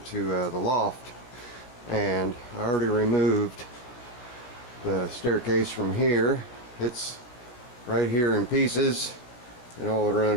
the loft. And I already removed the staircase from here. It's right here in pieces and all the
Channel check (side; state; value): right; late; 16 ms